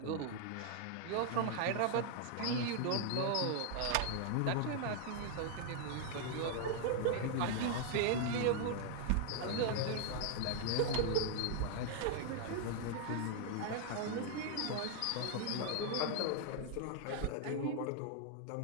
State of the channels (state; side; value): different; both; correlation 0.00